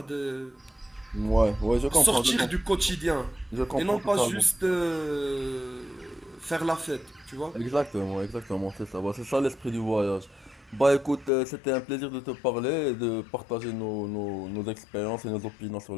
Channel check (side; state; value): right; drops out; at 11.3 s